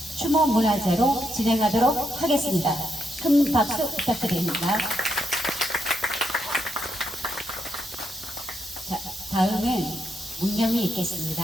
추모 문화제로 진행하도록 하겠습니다. 큰 박수 부탁드립니다. 자, 다음은 문념이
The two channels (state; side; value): normal; both; correlation 0.80